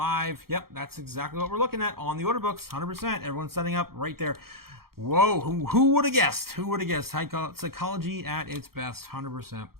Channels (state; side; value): late; left; 0.94 ms